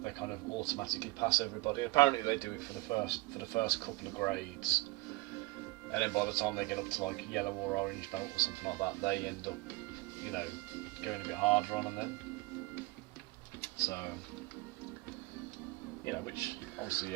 they kind of automatically pass everybody. Apparently they do it for the first couple of grades, and then by the time they get up to like yellow or orange belt or something like that, they end up, you know, going a bit harder on them then. So, you know, which obviously,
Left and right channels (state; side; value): quieter; left; 21.6 dB